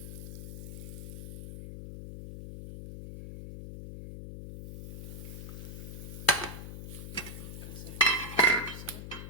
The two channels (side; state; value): left; noise; hum, 8 dB below the sound